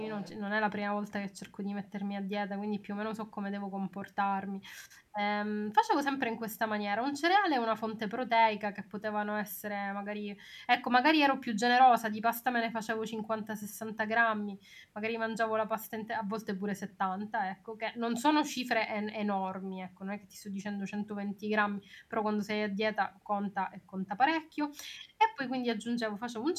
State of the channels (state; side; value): identical; both; correlation 1.00